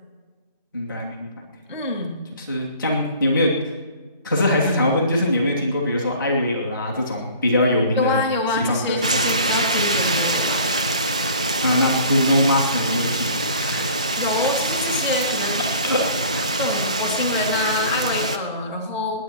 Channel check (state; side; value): inverted; both; correlation -0.47